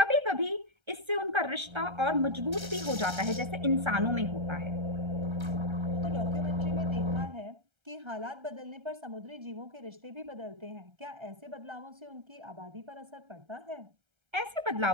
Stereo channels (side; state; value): left; late; 1.3 ms